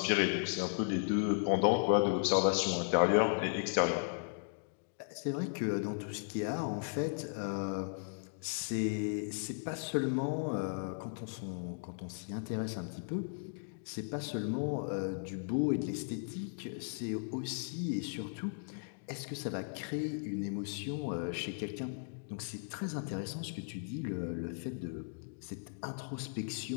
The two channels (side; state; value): right; silent; digital silence